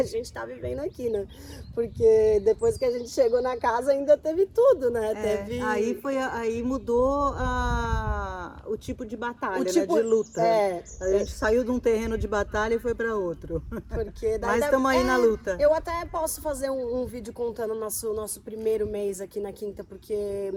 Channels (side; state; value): both; identical; correlation 1.00